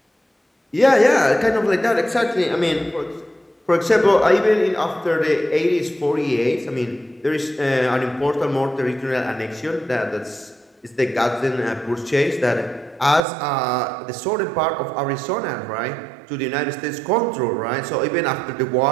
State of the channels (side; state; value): left; drops out; at 13.2 s